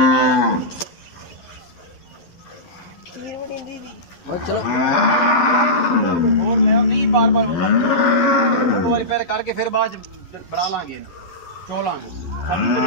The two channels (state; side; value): late; right; 11 ms